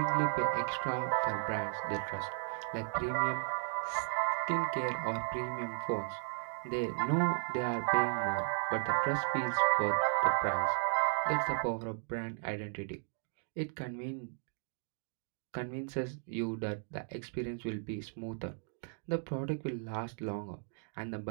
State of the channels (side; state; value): left; silent; 54 dB below the other